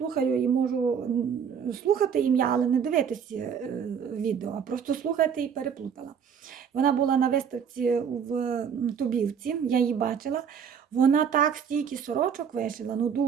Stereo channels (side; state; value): left; quieter; 7.4 dB